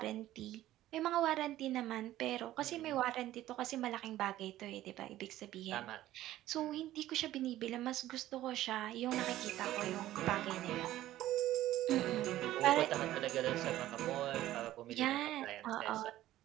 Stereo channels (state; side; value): quieter; left; 14.4 dB